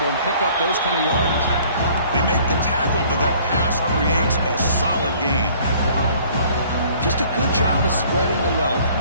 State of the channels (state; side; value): inverted; both; correlation -0.56